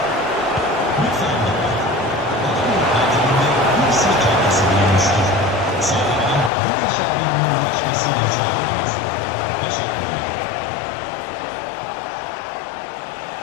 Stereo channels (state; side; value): drops out; right; at 6.5 s